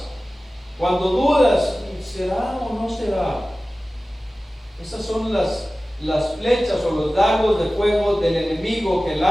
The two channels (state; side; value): normal; both; correlation 0.97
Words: Cuando dudas, ¿será o no será? Esas son las flechas o los dardos de fuego del enemigo que